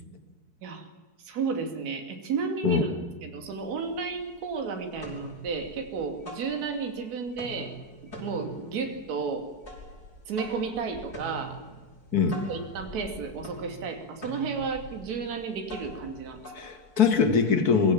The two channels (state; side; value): late; left; 4.6 ms